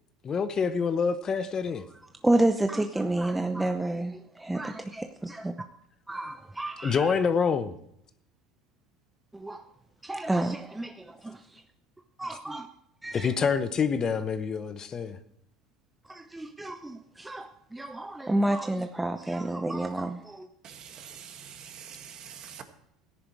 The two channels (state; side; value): normal; both; correlation 0.84